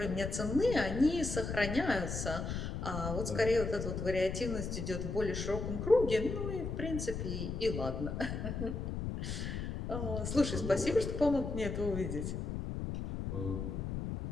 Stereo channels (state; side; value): noise; left; rumble, 4 dB below the sound